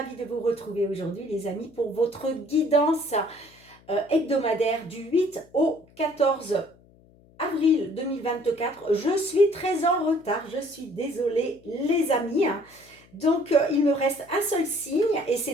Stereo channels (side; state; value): left; noise; hum, 28 dB below the sound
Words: de vous retrouver aujourd'hui les amis pour votre guidance hebdomadaire du 8 au 14 avril 2024. Je suis très en retard, je suis désolée les amis. Donc il me reste un seul signe et